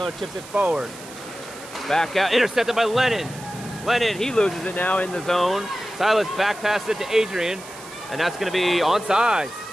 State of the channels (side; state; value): right; noise; hiss, 16 dB below the sound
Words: chips it forward. Back out, intercepted by Lennon. Lennon, he loses it now in the zone. Silas back passes it to Adrian, and that's going to be onside.